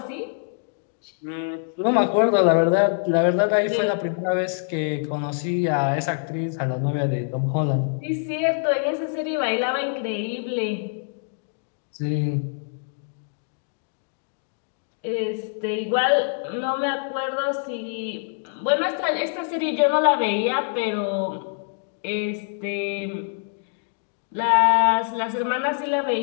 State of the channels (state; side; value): silent; right; digital silence